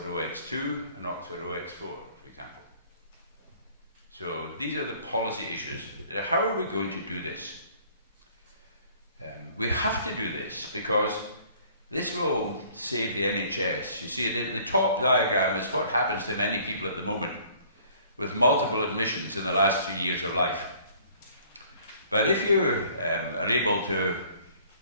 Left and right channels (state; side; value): inverted; both; correlation -0.55